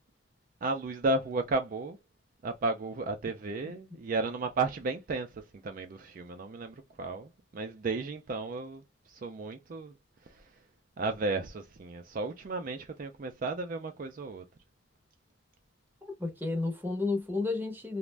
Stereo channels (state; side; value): normal; both; correlation 0.18